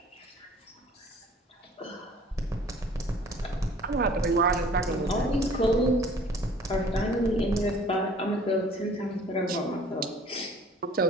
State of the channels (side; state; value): both; normal; correlation 0.52